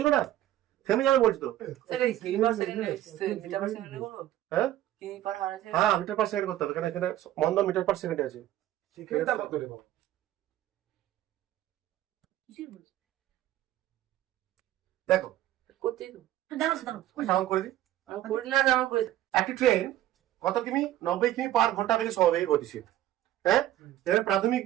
ছিল না, থেমে যাবে বলছি তো। স্যার এই কি পার সেকেন্ড মিটার পার সেকেন্ডে করবো? হ্যাঁ কি পার হার আছে? হ্যাঁ মিটার পার সেকেন্ড করতে হবে, এখানে এখানে মন্দন মিটার পার সেকেন্ডে আছে। সেকেন্ডটা কত রে বাবা? কিসের বলছিস? দেখো করতেই তো দাঁড়াও দাঁড়াও সাউন্ড করে দিই। আমি করি না, আমার করে একটি ট্রেন কত কিমি? 90 কিমি পার ঘন্টা বেগে সমবেগে গতিশীল। হ্যাঁ এখানে প্রাথমিক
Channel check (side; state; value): left; quieter; 13.5 dB